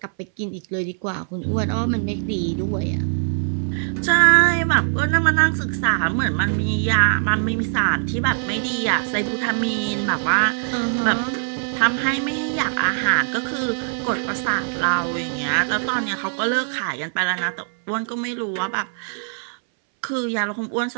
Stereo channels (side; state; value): left; silent; 63 dB below the other